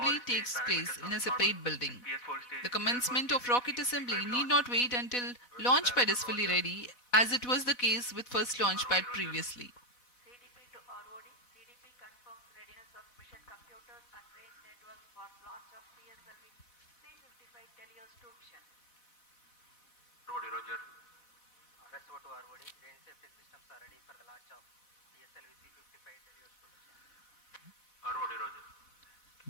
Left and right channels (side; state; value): right; late; 4.1 ms